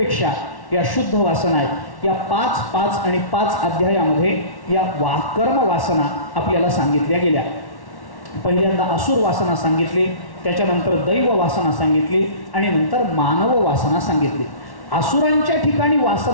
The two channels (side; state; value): right; late; 1.1 ms